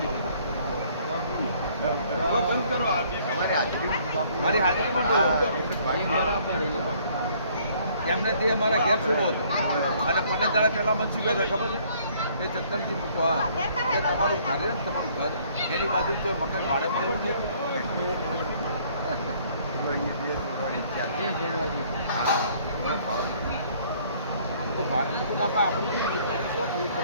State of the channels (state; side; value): inverted; both; correlation -0.61